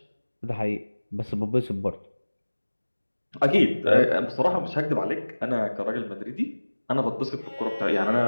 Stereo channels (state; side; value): inverted; both; correlation -1.00